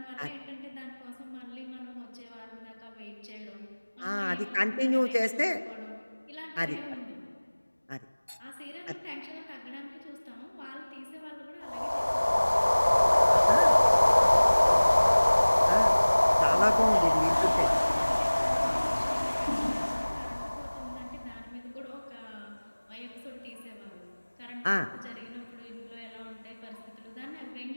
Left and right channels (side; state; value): both; inverted; correlation -1.00